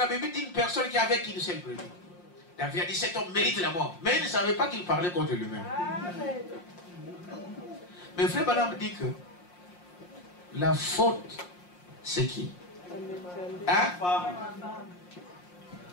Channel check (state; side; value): late; right; 5.6 ms